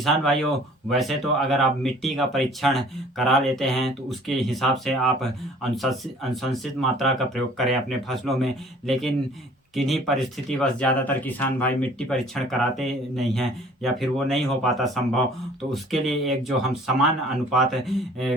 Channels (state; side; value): normal; both; correlation 0.52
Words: भाइयों, वैसे तो अगर आप मिट्टी का परीक्षण करा लेते हैं तो उसके हिसाब से आप अनुशंसित मात्रा का प्रयोग करें अपने फसलों में, लेकिन किन्हीं परिस्थितिवश ज़्यादातर किसान भाई मिट्टी परीक्षण कराते नहीं हैं या फिर वो नहीं हो पाता संभव। तो उसके लिए एक जो हम समान अनुपात